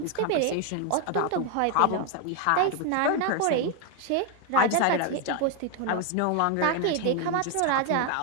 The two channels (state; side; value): different; both; correlation 0.01